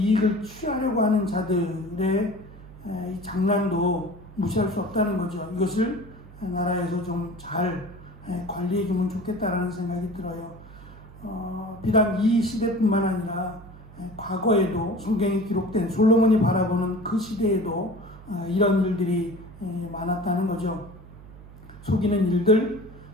취하려고 하는 자들의 이 장난도 무시할 수 없다는 거죠. 이것을 나라에서 좀 잘 관리해 주면 좋겠다라는 생각이 들어요. 비단 이 시대뿐만 아니라 과거에도 성경에 기록된 솔로몬이 바라보는 그 시대에도 이런 일들이 많았다는 거죠. 속이는 일들,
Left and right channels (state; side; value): noise; right; hum, 19 dB below the sound